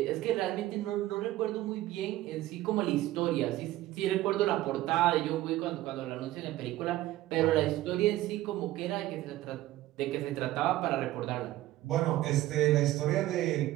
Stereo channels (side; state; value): left; quieter; 15.7 dB